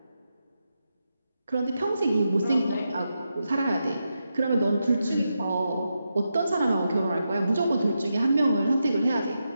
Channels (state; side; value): inverted; both; correlation -0.87